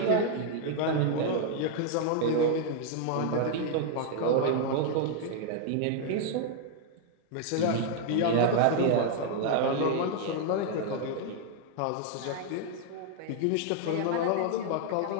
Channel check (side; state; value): both; different; correlation 0.00